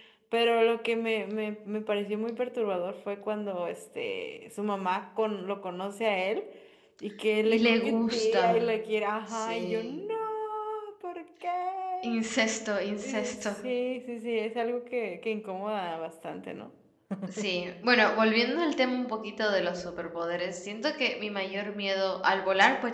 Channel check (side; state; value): both; identical; correlation 1.00